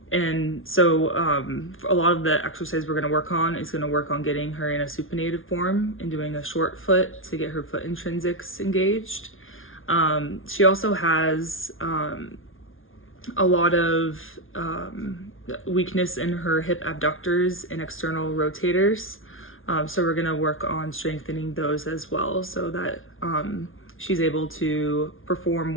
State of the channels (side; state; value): right; late; 0.59 ms